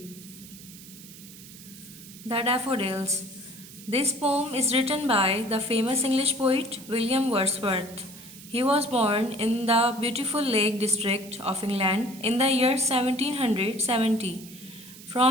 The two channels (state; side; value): noise; right; hiss, 17 dB below the sound